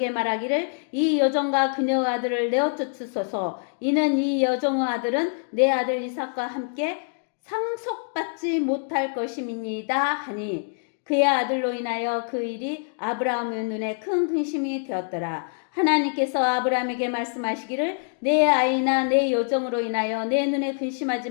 말하기를 이 여종과 그녀의 아들을 내어 쫓으소서. 이는 이 여종의 아들은 내 아들 이삭과 함께 상속받지 못할 것임이니이다 하니, 그의 아들로 인하여 그 일이 아브라함의 눈에 큰 근심이 되었더라. 하나님께서 아브라함에게 말씀하시기를 내 아이나 내 여종으로 인하여 내 눈에 근심하지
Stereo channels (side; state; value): right; silent; digital silence